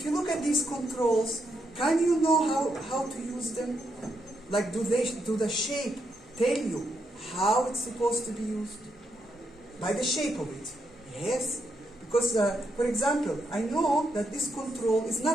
you look at these controls, can you know how to use them? Like do the shape tell you how it's supposed to be used? By the shape of it. Yes. Because, for example, I know that this control is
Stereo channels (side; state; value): both; normal; correlation 0.80